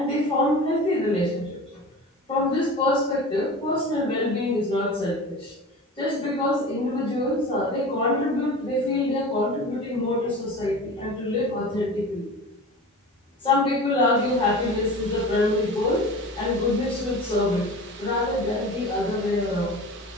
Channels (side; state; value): both; normal; correlation 0.35